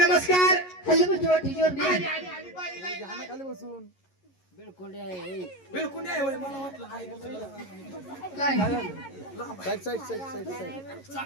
hello mister what is your name आली, आली, आली, बाई, लाई, लाई. खाली बसून बिलकुल आहे होय, मला वाटलं आहे काय side side side side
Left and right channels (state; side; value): late; right; 11 ms